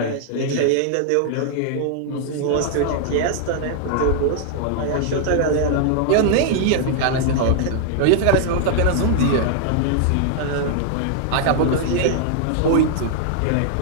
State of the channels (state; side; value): different; both; correlation 0.00